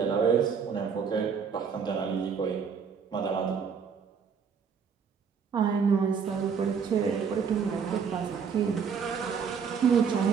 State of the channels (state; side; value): quieter; left; 6.4 dB